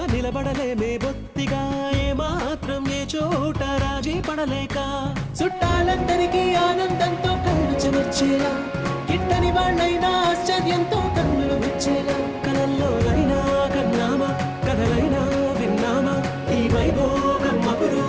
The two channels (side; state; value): both; identical; correlation 1.00